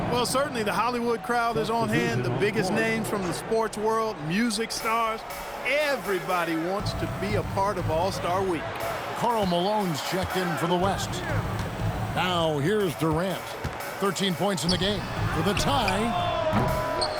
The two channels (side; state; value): both; identical; correlation 1.00